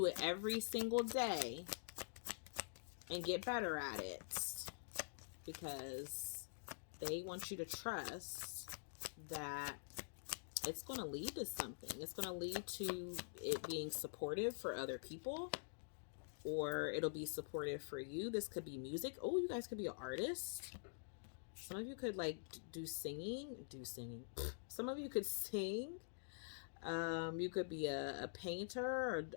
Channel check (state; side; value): silent; right; digital silence